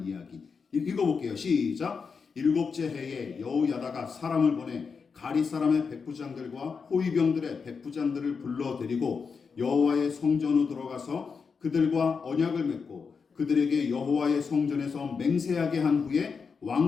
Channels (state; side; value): quieter; right; 5.5 dB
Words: 이야기 읽어볼게요. 시작. 일곱째 해에 여호야다가 사람을 보내 가리 사람의 백부장들과 호위병들의 백부장들을 불러 데리고 여호와의 성전으로 들어가서 그들과 언약을 맺고 그들에게 여호와의 성전에서 맹세하게 한 후에